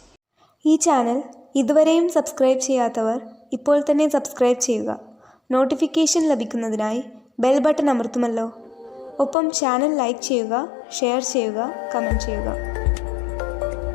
ഈ ചാനൽ ഇതുവരെയും സബ്സ്ക്രൈബ് ചെയ്യാത്തവർ ഇപ്പോൾ തന്നെ സബ്സ്ക്രൈബ് ചെയ്യുക. നോട്ടിഫിക്കേഷൻ ലഭിക്കുന്നതിനായി ബെൽ ബട്ടൺ അമർത്തുമല്ലോ. ഒപ്പം ചാനൽ ലൈക്ക് ചെയ്യുക, ഷെയർ ചെയ്യുക, കമൻറ്റ് ചെയ്യുക.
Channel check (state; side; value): drops out; right; at 9.3 s